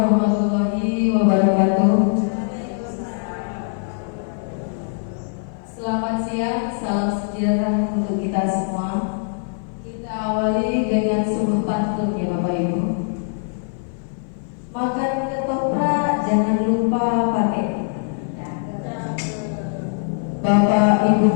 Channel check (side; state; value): right; silent; 57 dB below the other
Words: wabarakatuh. Selamat siang, salam sejahtera untuk kita semua. Kita awali dengan sungguh pantun ya Bapak Ibu. Makan ketoprak jangan lupa pakai. Bapak Ibu